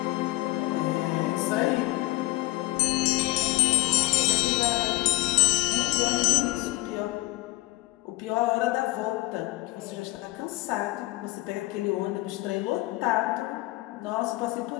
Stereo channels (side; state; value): right; quieter; 20.5 dB